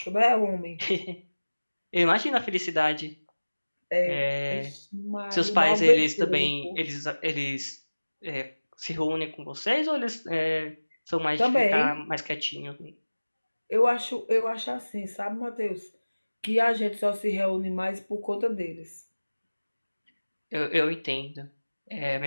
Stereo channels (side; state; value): both; inverted; correlation -1.00